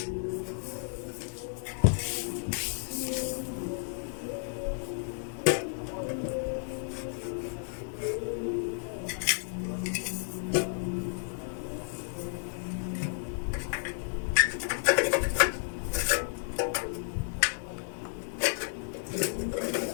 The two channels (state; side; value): silent; right; digital silence